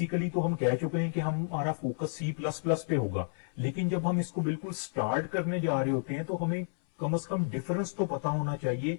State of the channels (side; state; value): right; silent; 57 dB below the other